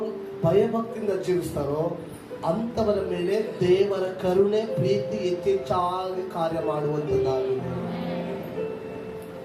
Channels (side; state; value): both; identical; correlation 1.00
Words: ಭಯಭಕ್ತಿಯಿಂದ ಜೀವಿಸ್ತಾರೋ ಅಂತವರ ಮೇಲೆ ದೇವರ ಕರುಣೆ ಪ್ರೀತಿ ಹೆಚ್ಚೆಚ್ಚಾಗಿ ಕಾರ್ಯ ಮಾಡುವಂತದ್ದಾಗಿದೆ.